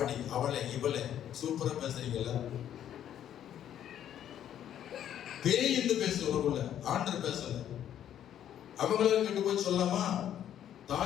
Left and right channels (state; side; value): quieter; right; 10.5 dB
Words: அவளை இவளை சூப்பரா பேசுறீங்கல்ல. பேய் என்று பேசுறவங்கள ஆண்டர் பேசல. அவங்களால கெட்டு போய் சொல்லலாமா?